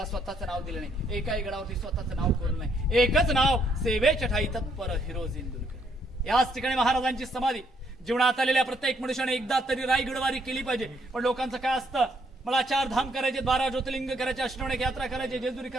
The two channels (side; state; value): both; normal; correlation 0.71